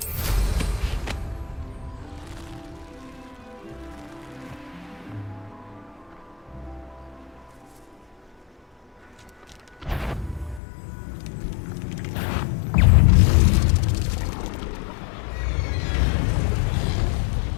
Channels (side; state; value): right; drops out; at 10.6 s